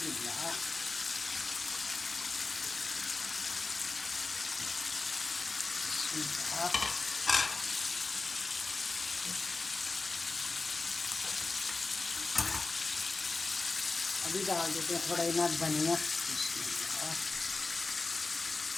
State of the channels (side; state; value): right; quieter; 3.8 dB